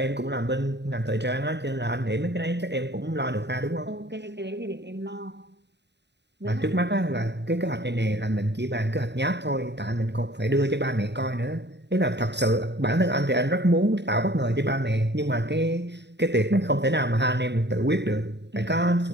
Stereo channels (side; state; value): left; late; 0.50 ms